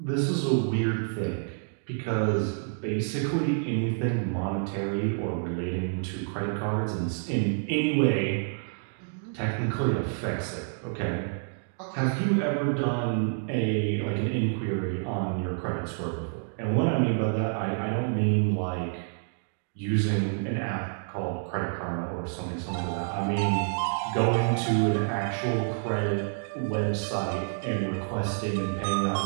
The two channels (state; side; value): silent; left; digital silence